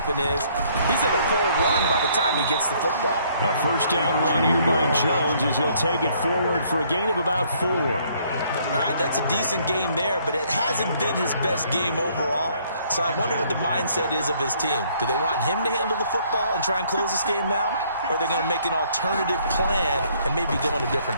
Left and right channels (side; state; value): both; inverted; correlation -0.64